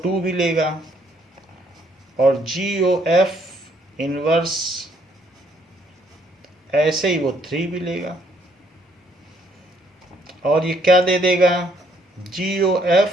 2 भी लेगा और GOF इनवर्स ऐसे ही वो 3 भी लेगा, और ये क्या दे देगा? GOF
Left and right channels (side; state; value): both; normal; correlation 0.67